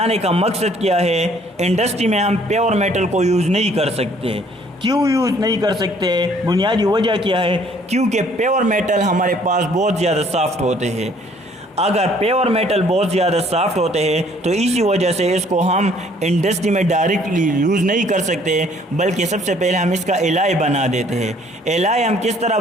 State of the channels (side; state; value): both; normal; correlation 0.60